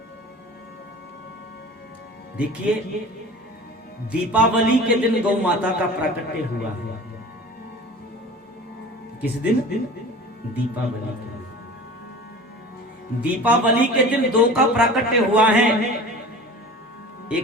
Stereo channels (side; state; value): both; normal; correlation 0.39